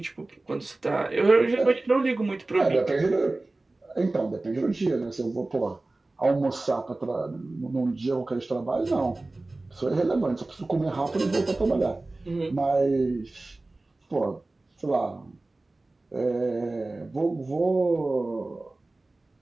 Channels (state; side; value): quieter; left; 3.0 dB